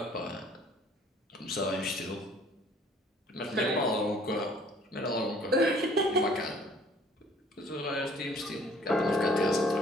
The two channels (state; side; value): normal; both; correlation 0.56